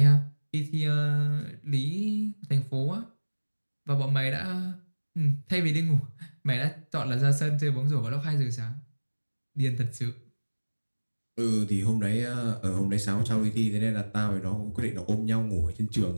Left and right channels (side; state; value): both; inverted; correlation -1.00